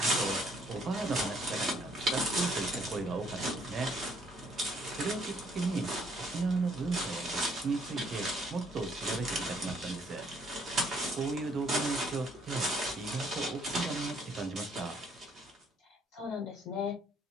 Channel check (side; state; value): both; normal; correlation 0.65